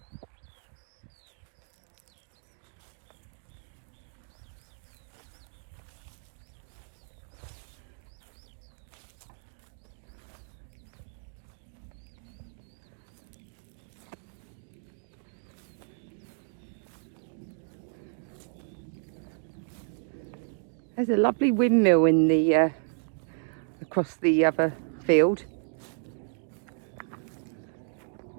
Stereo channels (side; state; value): left; silent; 56 dB below the other